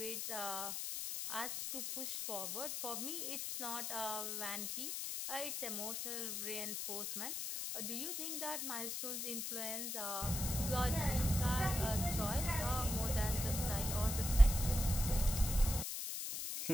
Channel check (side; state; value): left; noise; hiss, 3 dB below the sound